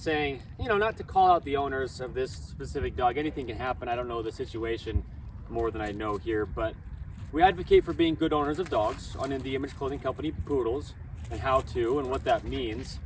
you know, not to call out the owners of this specific dog. Anything can happen. I don't know the situation more than I know here, but we advocate for being good owners of dogs on In The Image Clothing Company Poodles and how to and what that means.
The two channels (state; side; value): identical; both; correlation 1.00